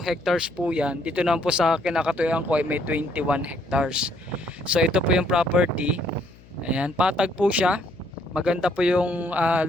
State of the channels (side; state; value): left; noise; hum, 24 dB below the sound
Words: hectares po yan. Dito naman po sa kinakatuyuan ko ay may 21 hectares. So ito po yung property. Ayan, patag po siya. Maganda po yung